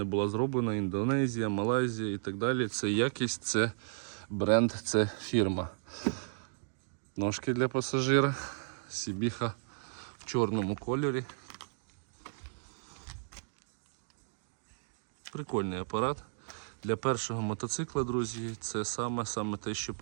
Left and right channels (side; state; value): left; silent; digital silence